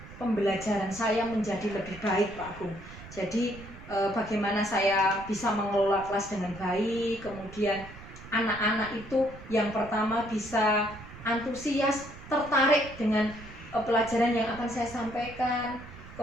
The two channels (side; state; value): right; noise; rumble, 16 dB below the sound